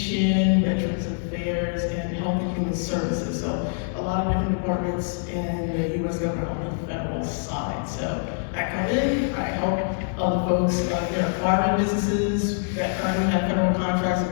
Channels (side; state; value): right; silent; 62 dB below the other